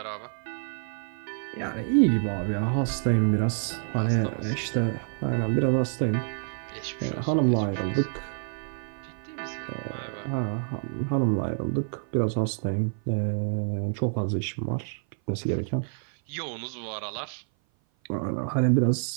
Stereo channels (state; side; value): silent; left; 56 dB below the other